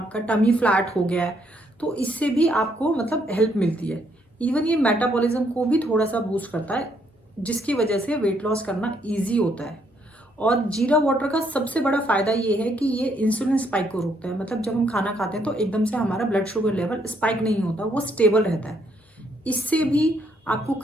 टमी फ्लैट हो गया है। तो इससे भी आपको मतलब हेल्प मिलती है। इवन ये मेटाबॉलिज्म को भी थोड़ा सा बूस्ट करता है, जिसकी वजह से वेट लॉस करना ईजी होता है। और जीरा वाटर का सबसे बड़ा फायदा ये है कि ये इंसुलिन स्पाइक को रोकता है। मतलब जब हम खाना खाते हैं तो एकदम से हमारा ब्लड शुगर लेवल स्पाइक नहीं होता, वो स्टेबल रहता है। इससे भी आपको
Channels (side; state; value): both; normal; correlation 0.72